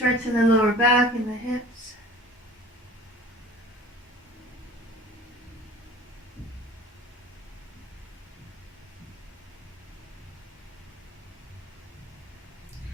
in the lower back and the hips.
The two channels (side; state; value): both; normal; correlation 0.43